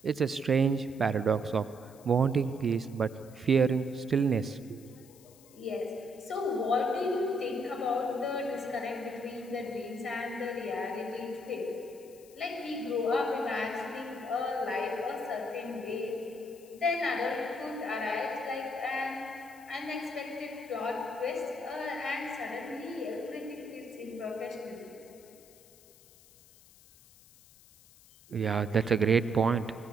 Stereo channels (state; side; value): noise; left; hiss, 24 dB below the sound